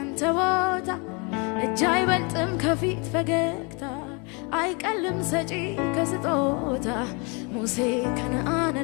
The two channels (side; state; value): right; quieter; 31.8 dB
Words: ቦታ እጅ አይበልጥም ከፊት ፈገግታ አይቀልም ሰጪ ከስጦታ ሙሴ